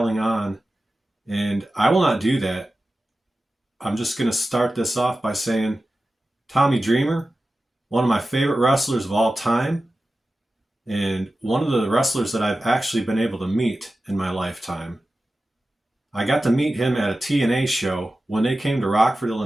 on, and I will not do that. I'm just going to start this off by saying Tommy Dreamer, one of my favorite wrestlers of all time, and one of the wrestlers that I've actually been able to meet in my lifetime. I got to meet him at a TNA show when they came to Rockford,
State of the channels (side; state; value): both; normal; correlation 0.94